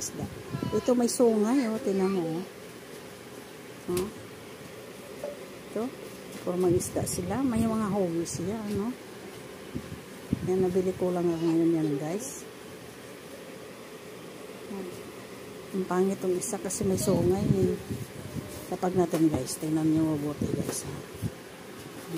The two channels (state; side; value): identical; both; correlation 1.00